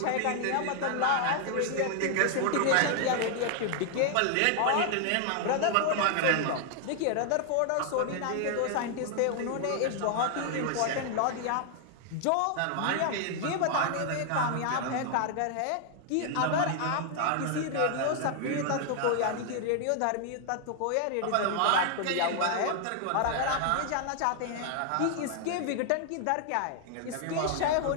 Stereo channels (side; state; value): both; different; correlation 0.00